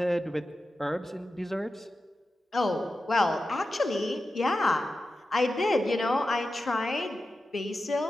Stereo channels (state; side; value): normal; both; correlation 0.92